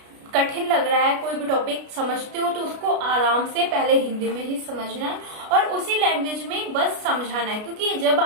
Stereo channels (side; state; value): left; late; 33 ms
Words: कठिन लग रहा है, कोई भी टॉपिक समझते हो तो उसको आराम से पहले हिंदी में ही समझना है और उसी लैंग्वेज में बस समझाना है। क्योंकि जब